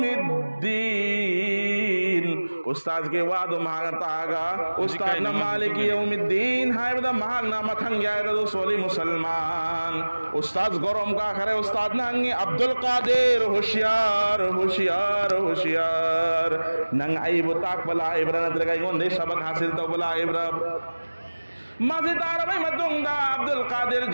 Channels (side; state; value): both; inverted; correlation -1.00